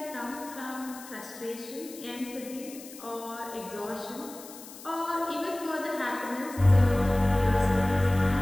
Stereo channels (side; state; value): left; noise; hiss, 16 dB below the sound